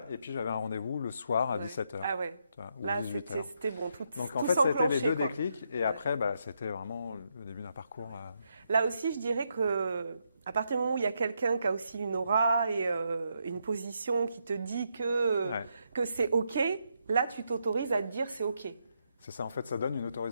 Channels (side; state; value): both; inverted; correlation -0.80